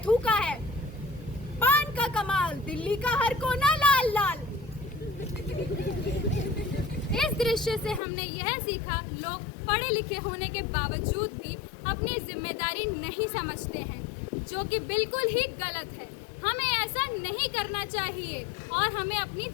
थूका है। पान का कमाल, दिल्ली का हर कोना लाल लाल। इस दृश्य से हमने यह सीखा, लोग पढ़े लिखे होने के बावजूद भी अपनी जिम्मेदारी नहीं समझते हैं, जो कि बिल्कुल ही गलत है। हमें ऐसा नहीं करना चाहिए और हमें अपनी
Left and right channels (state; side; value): drops out; right; at 8.0 s